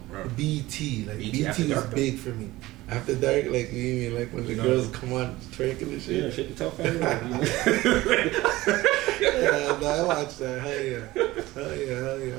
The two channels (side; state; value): left; quieter; 18.2 dB